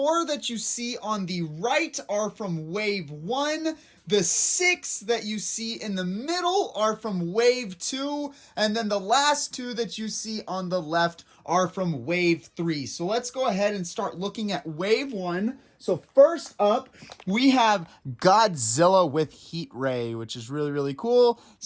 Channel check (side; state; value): both; identical; correlation 1.00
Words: that you see on the right are from Wave 1. The 6 that you see in the middle are from Wave 2. And then the last 2 that you see on the left are from Wave 3. So let's go ahead and start looking at Wave 1. So first up, we have Godzilla with Heat Ray, which is really, really cool.